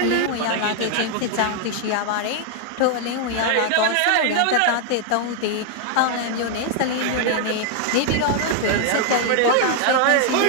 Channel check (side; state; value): both; different; correlation 0.00